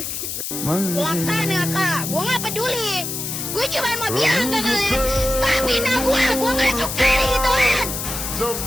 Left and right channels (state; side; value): noise; left; hiss, 5 dB below the sound